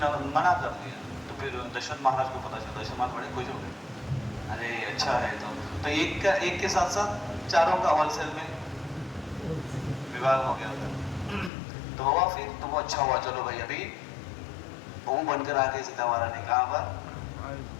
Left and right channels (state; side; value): drops out; right; at 11.5 s